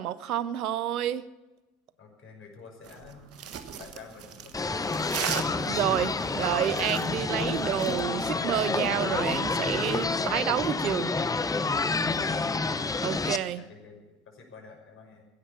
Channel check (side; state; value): both; normal; correlation 0.39